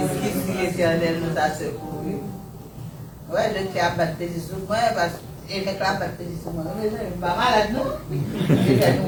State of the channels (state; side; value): identical; both; correlation 1.00